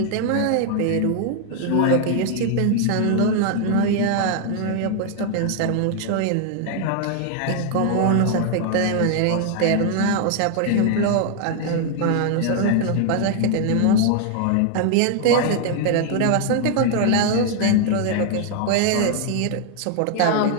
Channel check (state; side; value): different; both; correlation 0.00